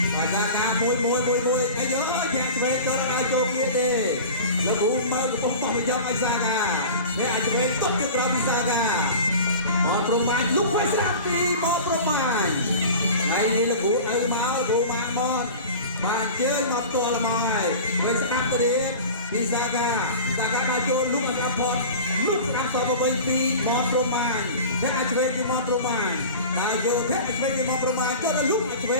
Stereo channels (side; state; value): both; inverted; correlation -0.36